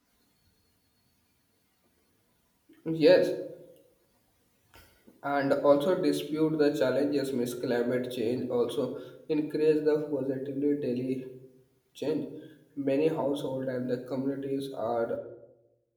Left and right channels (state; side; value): identical; both; correlation 1.00